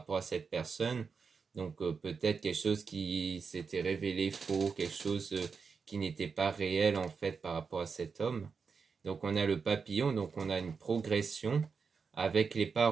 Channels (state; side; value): quieter; left; 5.4 dB